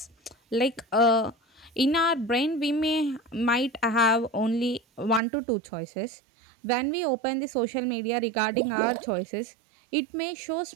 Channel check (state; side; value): drops out; left; at 5.2 s